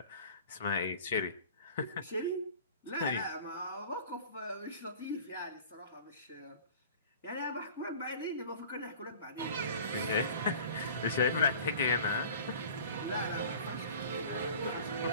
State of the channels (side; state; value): both; inverted; correlation -0.43